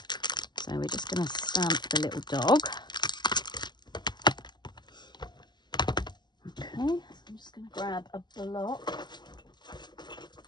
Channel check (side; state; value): right; late; 0.21 ms